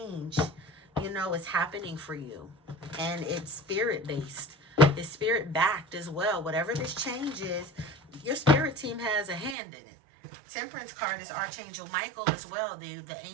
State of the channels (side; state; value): left; drops out; at 9.6 s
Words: you know, is happening for you. And it's spirit-based. It's spirit-backed as well. Whatever this change is, your spirit team has a hand in it. Temperance card is Archangel Michael as well, the